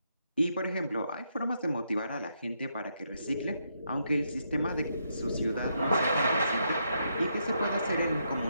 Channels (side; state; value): both; inverted; correlation -0.78